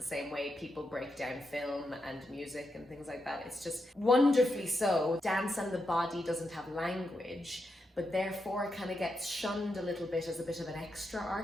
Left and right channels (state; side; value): normal; both; correlation 0.85